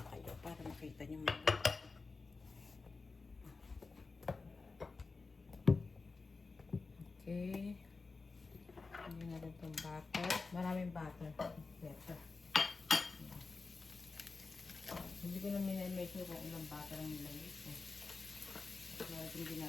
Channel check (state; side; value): quieter; right; 4.0 dB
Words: kayo para makita niyo mga. Okay. Hindi natin itong butter. Maraming butter. Better. Hindi ko na minimake kung ilang butter ang nilagay ko. Kaya hindi